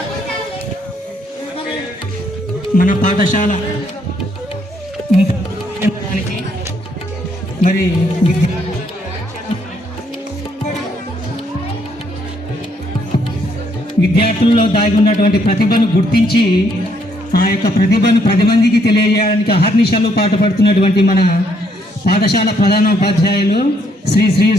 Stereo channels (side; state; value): both; normal; correlation 0.71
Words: మన పాఠశాల మరి విద్యార్థుల్లో దాగి ఉన్నటువంటి ప్రతిభను గుర్తించి ఆ యొక్క ప్రతిభను 10 మందికి తెలియజేయడానికి అహర్నిశలు పాటుపడుతున్నటువంటి మన పాఠశాల ప్రధాన ఉపాధ్యాయులు